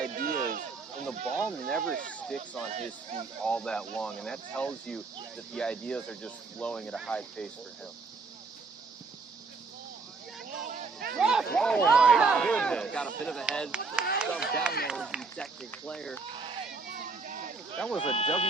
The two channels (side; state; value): left; quieter; 4.2 dB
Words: is, and the ball never sticks on his feet all that long, and that tells you that the ideas are just flowing at a high pace for him. Oh my goodness. Got a bit of a head shoved down there with the Tactic player. That was a